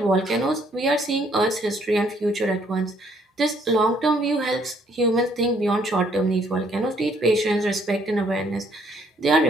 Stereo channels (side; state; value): both; normal; correlation 0.66